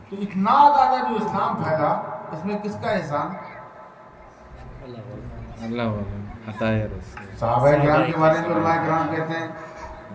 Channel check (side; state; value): both; identical; correlation 1.00